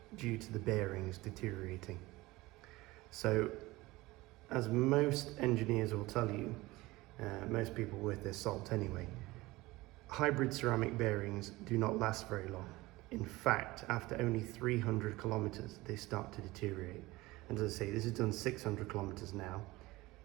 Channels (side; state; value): left; quieter; 20.1 dB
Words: due to the bearings deteriorating. So, as most engineers will tell you, most people worth their salt anyway, hybrid ceramic bearings do not last very long. In fact, after only 300 kilometers, they start to deteriorate. And as I say, this has done 600 kilometers now,